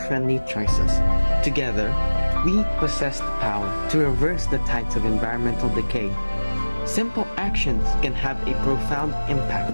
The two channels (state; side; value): inverted; both; correlation -1.00